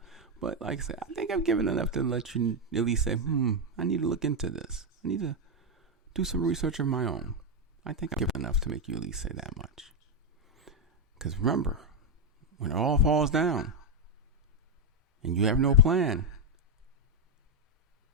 But like I said, I think I've given enough to let you at least say, I need to look into this. I need to do some research of my own. I think I've given enough to make you at least say that much. Because remember, when it all falls down and you have no plan,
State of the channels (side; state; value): both; normal; correlation 0.01